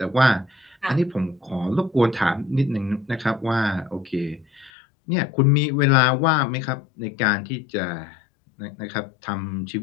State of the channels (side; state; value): right; drops out; at 4.7 s